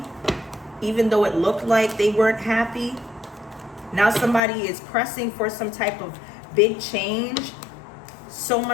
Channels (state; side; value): drops out; right; at 4.4 s